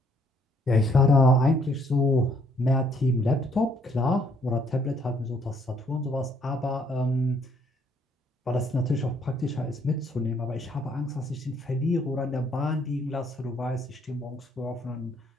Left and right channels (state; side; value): normal; both; correlation 0.66